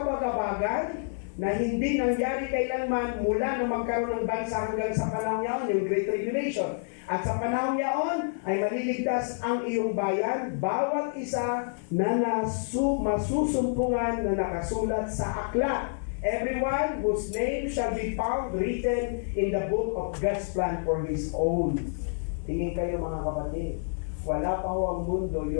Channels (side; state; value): right; silent; 59 dB below the other